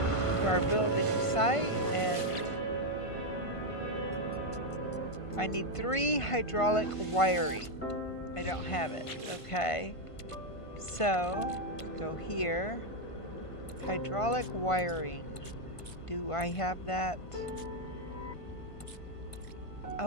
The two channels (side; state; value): right; late; 1.5 ms